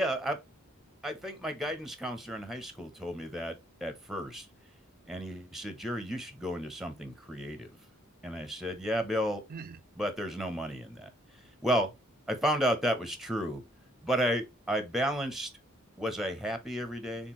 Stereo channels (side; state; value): both; normal; correlation 0.68